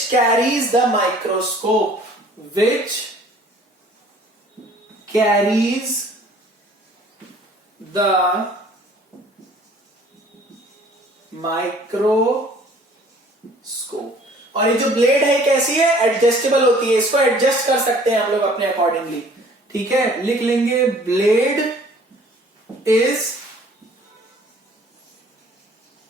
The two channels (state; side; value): normal; both; correlation 0.53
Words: carries the microscope, which carries the microscope। और ये जो ब्लेड है कैसी है, एडजस्टेबल होती है, इसको एडजस्ट कर सकते हैं हम लोग अपने अकॉर्डिंगली। ठीक है, लिख लेंगे blade is